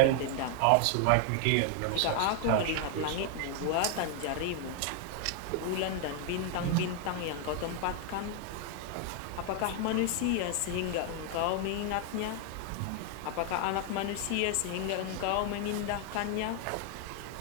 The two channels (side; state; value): both; different; correlation 0.00